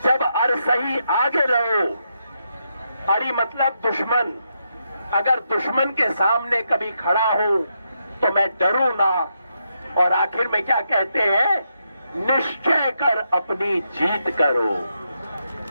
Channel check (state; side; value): inverted; both; correlation -0.82